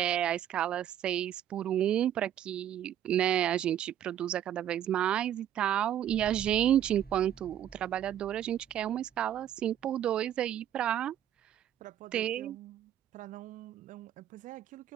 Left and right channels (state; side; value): quieter; left; 10.8 dB